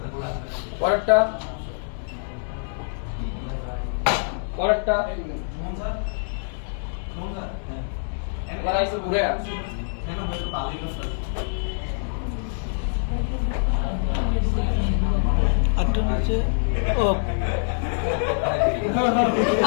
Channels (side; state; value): right; silent; digital silence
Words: পরেরটা পরেরটা এবার আইসে ঘুরে আটটা নিচে ও